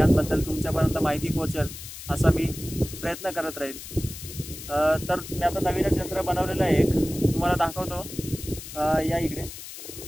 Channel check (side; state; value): left; noise; hiss, 12 dB below the sound